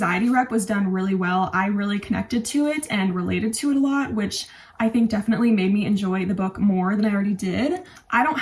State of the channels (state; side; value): identical; both; correlation 1.00